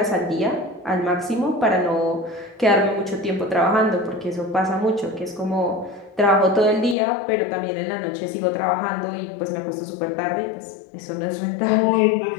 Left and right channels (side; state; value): right; drops out; at 7.0 s